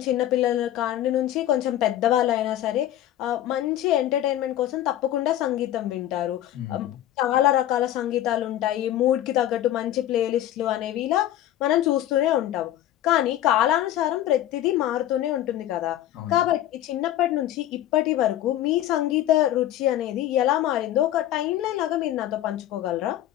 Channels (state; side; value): quieter; right; 12.8 dB